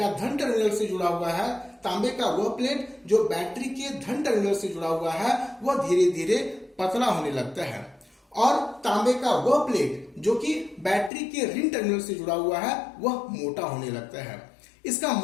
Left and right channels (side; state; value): right; drops out; at 11.1 s